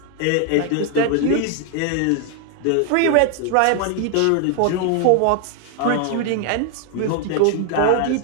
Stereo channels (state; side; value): different; both; correlation 0.00